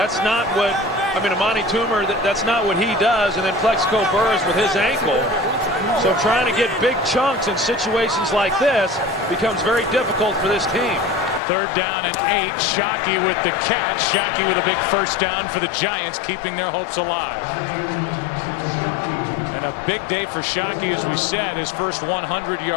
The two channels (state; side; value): drops out; right; at 11.4 s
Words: not what, I mean, Amani Toomer, that's not what he does. And then Plexico Burress with his ankle. So trying to get big chunks in situations like this becomes very difficult for this team. 3rd down and 8. Shockey with the catch. Shockey with a big first down for the Giants, keeping their hopes alive. And a big day for Shockey, as we said, his first